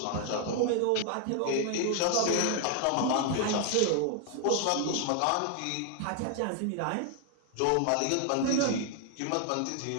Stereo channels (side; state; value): both; different; correlation 0.00